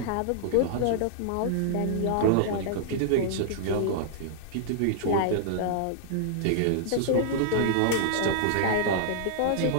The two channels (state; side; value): different; both; correlation -0.01